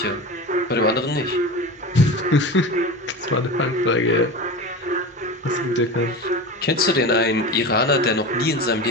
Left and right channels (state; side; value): normal; both; correlation 0.28